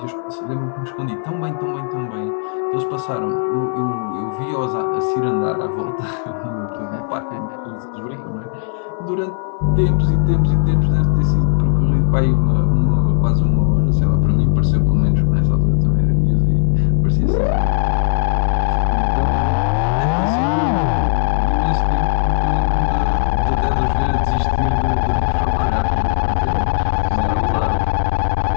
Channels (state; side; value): silent; right; 59 dB below the other